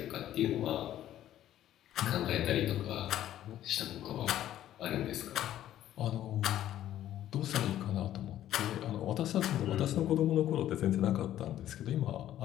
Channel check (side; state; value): right; quieter; 12.3 dB